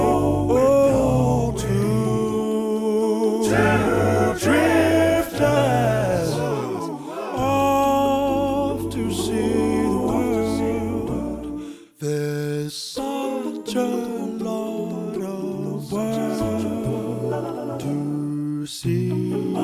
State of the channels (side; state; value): both; identical; correlation 1.00